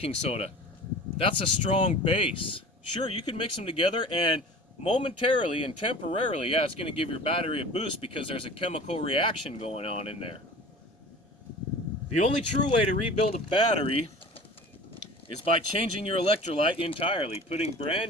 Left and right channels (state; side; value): normal; both; correlation 0.40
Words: soda, that's a strong base. Sure, you can mix them together and momentarily and temporarily, yeah, it's going to give your battery a boost because there's a chemical reaction going on in there. The only true way to rebuild a battery is by changing your electrolyte entirely, putting